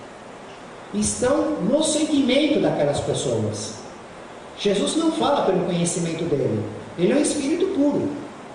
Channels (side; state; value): both; identical; correlation 1.00